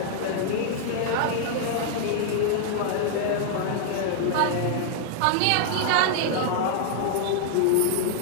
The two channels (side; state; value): both; different; correlation -0.01